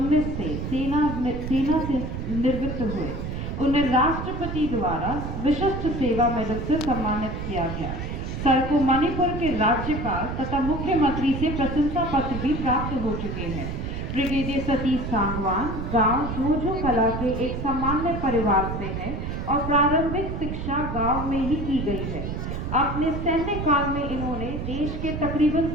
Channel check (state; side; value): noise; right; rumble, 5 dB below the sound